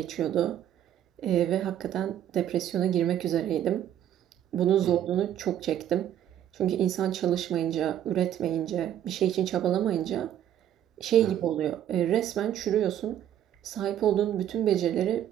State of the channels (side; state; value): left; quieter; 10.8 dB